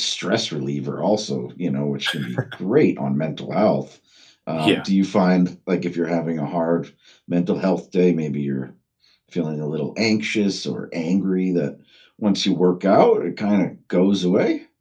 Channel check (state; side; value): identical; both; correlation 1.00